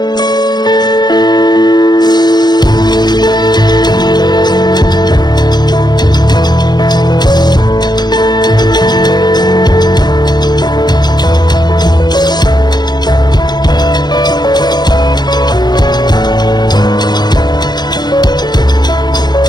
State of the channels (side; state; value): right; late; 0.20 ms